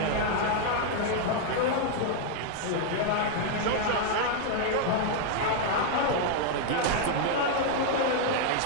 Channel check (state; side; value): different; both; correlation 0.00